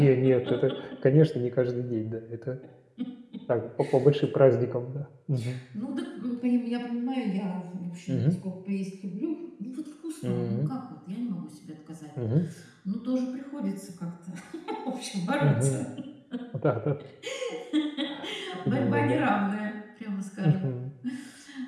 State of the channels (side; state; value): both; identical; correlation 1.00